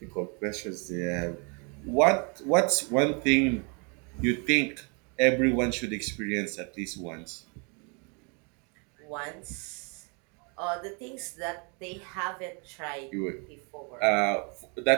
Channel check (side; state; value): left; quieter; 34.4 dB